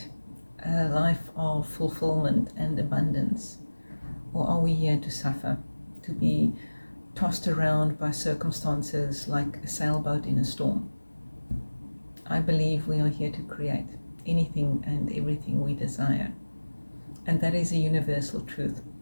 a life of fulfillment and abundance? Or are we here to suffer, to be tossed around by circumstances like a sailboat in a storm? I believe we are here to create anything and everything we desire. And that is a universal truth.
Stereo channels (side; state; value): both; inverted; correlation -1.00